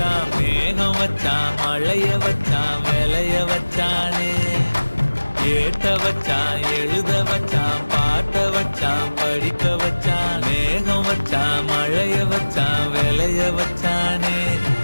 மேகம் வச்சான் மழைய வச்சான் விளைய வச்சானே ஏத்த வச்சான் எழுத வச்சான் பாட்ட வச்சான் படிக்க வச்சான் மேகம் வச்சான் மழைய வச்சான் விளைய வச்சானே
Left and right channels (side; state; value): both; inverted; correlation -1.00